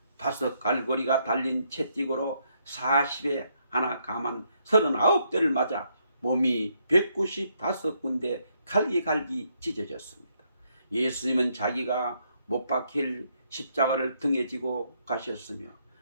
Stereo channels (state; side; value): inverted; both; correlation -0.74